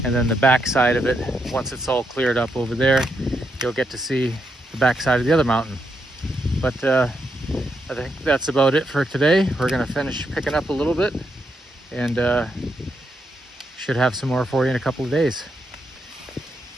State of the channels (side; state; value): both; normal; correlation 0.81